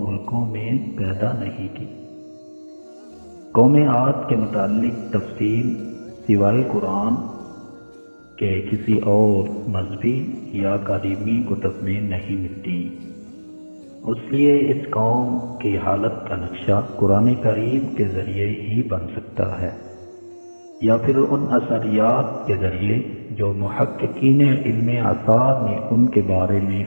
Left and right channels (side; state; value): both; inverted; correlation -1.00